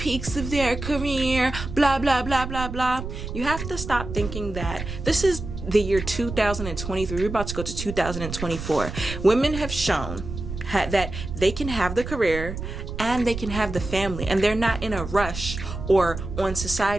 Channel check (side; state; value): right; noise; rumble, 8 dB below the sound